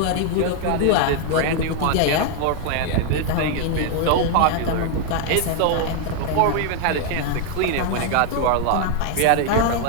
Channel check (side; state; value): both; different; correlation 0.00